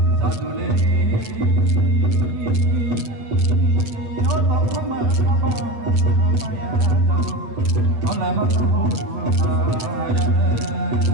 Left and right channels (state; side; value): late; left; 7.8 ms